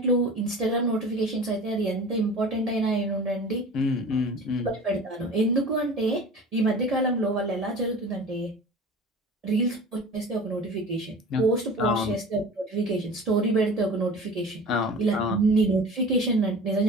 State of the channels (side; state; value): both; normal; correlation 0.39